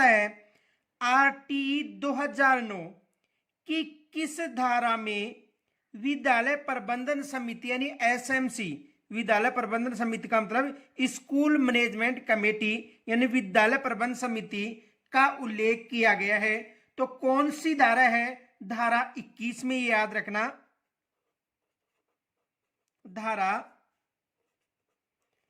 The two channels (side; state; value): both; identical; correlation 1.00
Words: है आरटी 2009 की किस धारा में विद्यालय प्रबंधन समिति यानी एसएमसी, विद्यालय प्रबंधन समिति का मतलब स्कूल मैनेजमेंट कमेटी यानी विद्यालय प्रबंधन समिति का उल्लेख किया गया है। तो कौन सी धारा है? धारा 21 में, याद रखना, धारा